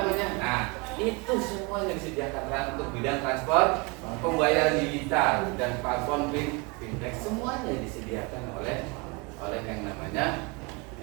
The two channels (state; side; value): quieter; left; 28.5 dB